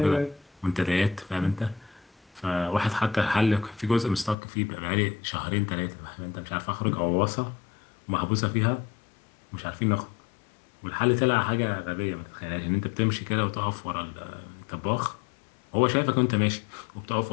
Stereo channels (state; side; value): drops out; right; at 4.4 s